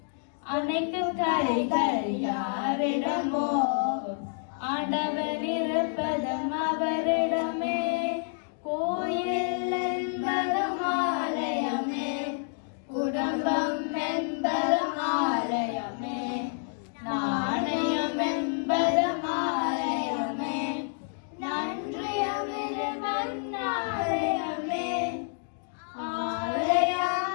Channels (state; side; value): silent; right; 59 dB below the other